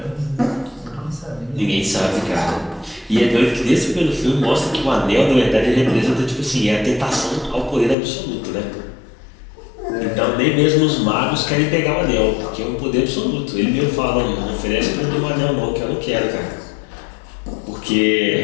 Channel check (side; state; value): right; drops out; at 8.0 s